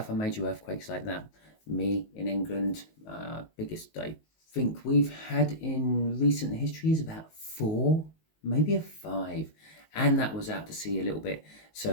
major earthquakes like that. Me in England, biggest I think we've had in recent history is about 4, maybe a 5. And that was out to sea a little bit,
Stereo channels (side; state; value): right; late; 19 ms